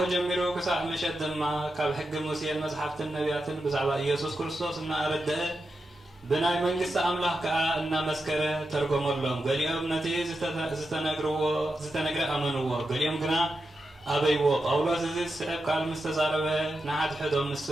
ጀሚሩ ክሳብ ምሸት ድማ ካብ ሕጊ ሙሴን መፅሓፍትን ነቢያትን ብዛዕባ ኢየሱስ ክርስቶስ እናኣረድአ ብናይ መንግስቲ ኣምላኽ ከዓ እናመስከረ ተርጎመሎም። ገሊኦም ነቲ ዝተነግረ ኣመንዎ፣ ገሊኦም ግና ኣበይዎ። ጳውሎስ እዚ ዝስዕብ ቃል ምስ ተዛረበ ንሓድሕዶም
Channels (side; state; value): both; normal; correlation 0.89